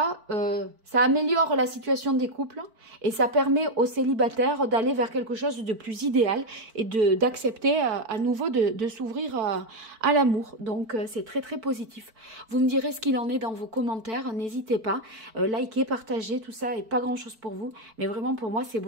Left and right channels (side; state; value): left; late; 4.5 ms